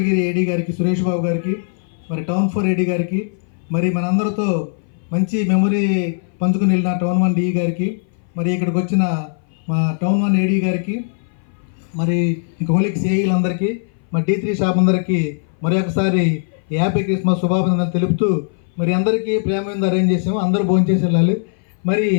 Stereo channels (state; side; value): silent; right; 60 dB below the other